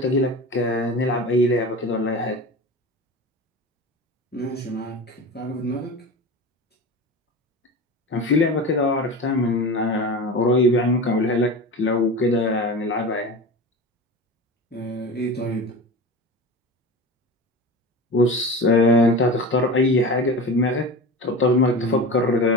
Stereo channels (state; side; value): normal; both; correlation 0.30